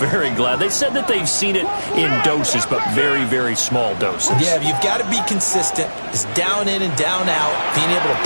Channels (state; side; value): inverted; both; correlation -1.00